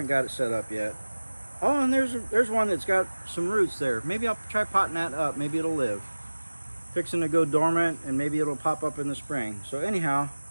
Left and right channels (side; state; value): both; inverted; correlation -1.00